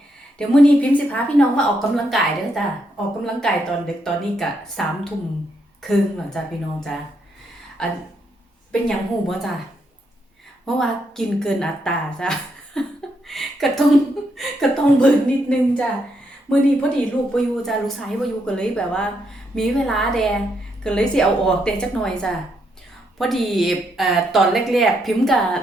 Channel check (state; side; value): normal; both; correlation 0.78